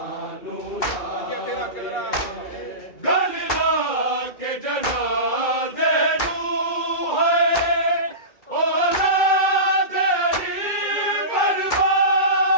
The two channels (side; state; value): right; late; 2.2 ms